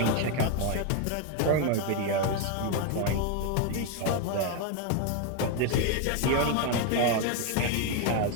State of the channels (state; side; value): different; both; correlation 0.01